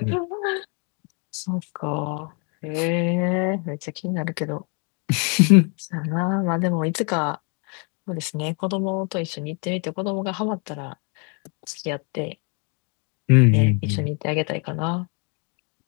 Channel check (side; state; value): right; quieter; 35.8 dB